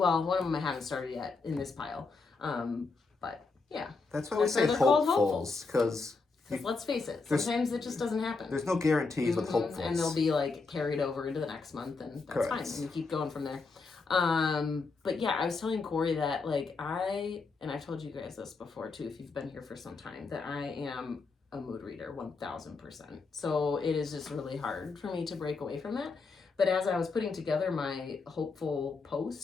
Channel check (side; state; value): right; quieter; 4.2 dB